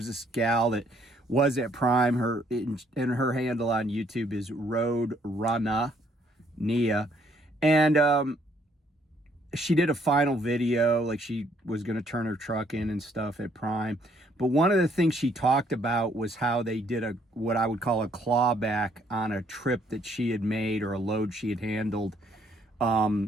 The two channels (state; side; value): normal; both; correlation 0.67